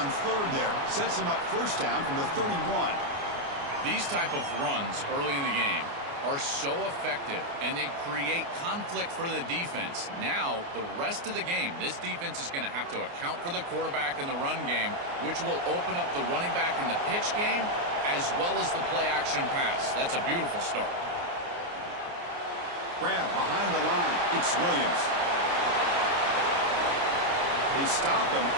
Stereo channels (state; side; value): late; left; 29 ms